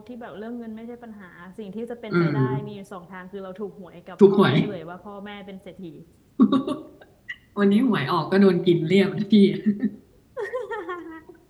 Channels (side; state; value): both; identical; correlation 1.00